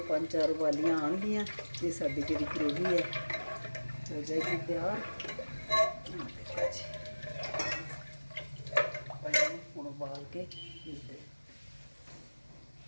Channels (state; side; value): inverted; both; correlation -1.00